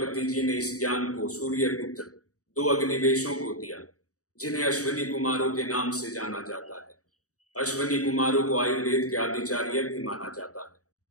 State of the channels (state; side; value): late; right; 0.66 ms